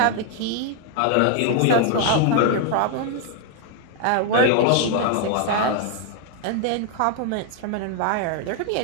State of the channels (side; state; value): both; different; correlation 0.00